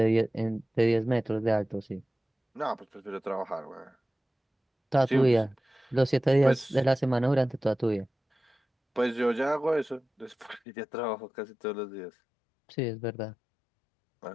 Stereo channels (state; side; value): drops out; right; at 10.6 s